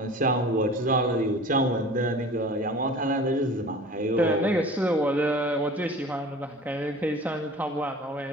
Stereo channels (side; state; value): both; normal; correlation 0.41